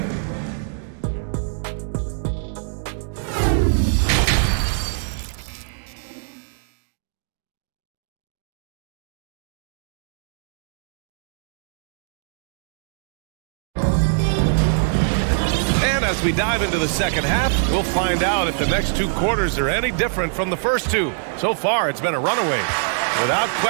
As we dive into the second half, we'll find out if the next 2 quarters are any different from the first 2. So far, it's been a runaway. Without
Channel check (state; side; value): silent; left; digital silence